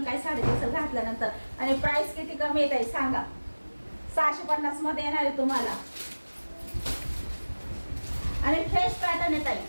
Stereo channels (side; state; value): both; inverted; correlation -1.00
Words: काय साडी दिसेल घातल्यानंतर. आणि प्राइस किती कमी येत आहे सांगा. 650 मध्ये येणार आहे तुम्हाला. आणि फ्रेश पॅटर्न येत